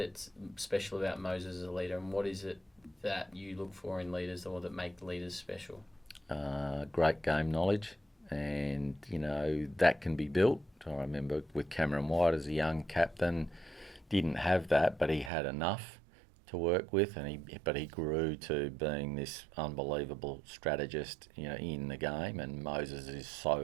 special about Moses as a leader, and what is it that you look for in leaders or that make leaders special? Great game knowledge, and that can be built. I remember with Cameron White as a young captain, didn't have that, but he had enough to work with, but he grew to being this unbelievable strategist, in the game. And Moses is so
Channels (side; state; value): left; drops out; at 15.3 s